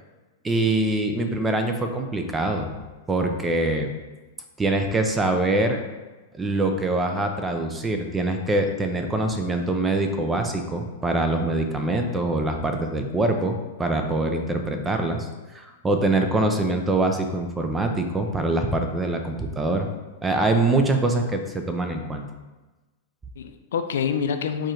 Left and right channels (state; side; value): normal; both; correlation 0.40